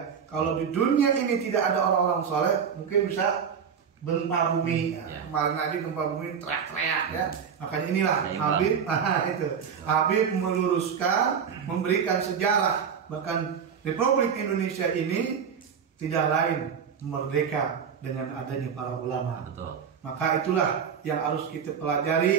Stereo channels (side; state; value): left; quieter; 7.1 dB